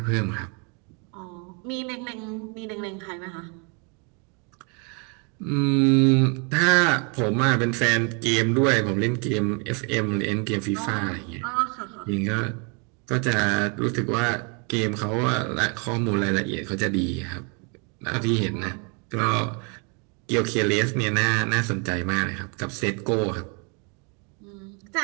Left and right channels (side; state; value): left; quieter; 35.0 dB